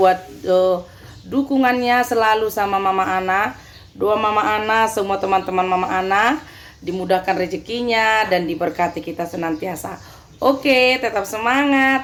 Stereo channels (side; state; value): both; identical; correlation 1.00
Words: dukungannya selalu sama Mama Ana. Doa Mama Ana, semua teman-teman Mama Ana dimudahkan rezekinya dan diberkati kita senantiasa. Oke, tetap